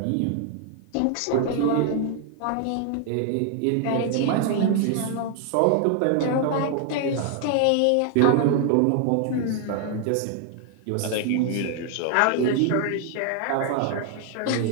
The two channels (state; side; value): different; both; correlation 0.00